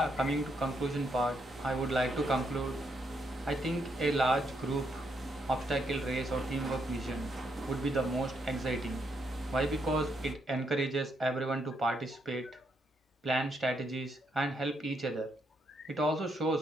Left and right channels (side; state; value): both; normal; correlation 0.77